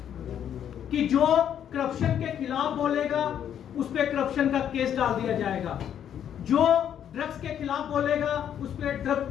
कि जो करप्शन के खिलाफ बोलेगा उस पर करप्शन का केस डाल दिया जाएगा, जो ड्रग्स के खिलाफ बोलेगा उस पर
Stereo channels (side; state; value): right; quieter; 9.5 dB